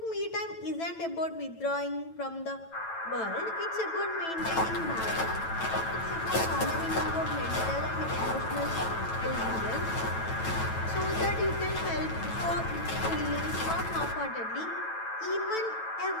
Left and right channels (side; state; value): right; late; 9.1 ms